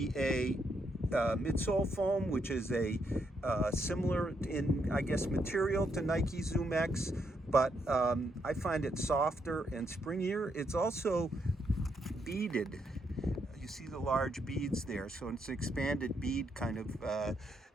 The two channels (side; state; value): both; normal; correlation 0.77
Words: midsole foam, which is a similar in, I guess, material to Nike Zoom X, but I find it softer and springier. It's also beaded. You see the large beads there, so it's an expanded bead kind of